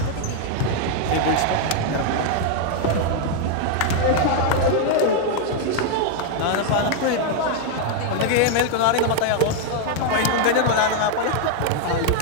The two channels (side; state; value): both; different; correlation 0.00